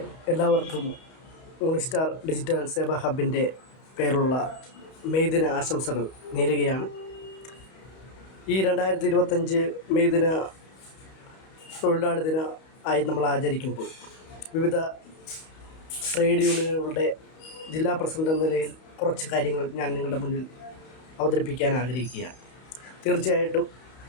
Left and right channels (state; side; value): late; right; 31 ms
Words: എല്ലാവർക്കും യൂണിസ്റ്റാർ ഡിജിറ്റൽ സേവാ ഹബിൻ്റെ പേരുള്ള മെയ് ദിന ആശംസകൾ നേരുകയാണ്. ഈ 2025 മെയ് ദിന തൊഴിലാളി ദിന ആയി നമ്മൾ ആചരിക്കുമ്പോൾ വിവിധ ട്രേഡ് യൂണിയനുകളുടെ ജില്ലാ പ്രസിഡന്റ് എന്ന നിലയിൽ കുറച്ച് കാര്യങ്ങൾ ഞാൻ നിങ്ങളുടെ മുന്നിൽ അവതരിപ്പിക്കാൻ ആഗ്രഹിക്കുകയാണ്. തീർച്ചയായിട്ടും